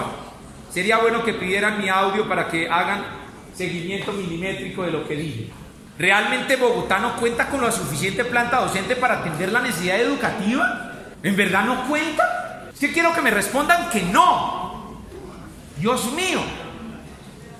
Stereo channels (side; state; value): both; identical; correlation 1.00